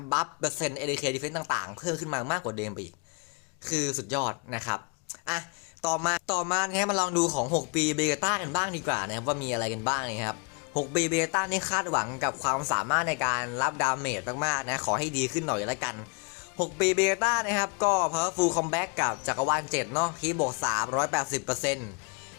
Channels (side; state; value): right; quieter; 34.6 dB